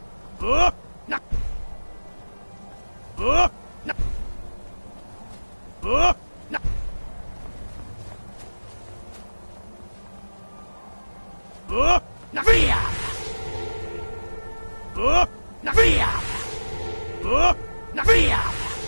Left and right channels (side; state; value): both; inverted; correlation -1.00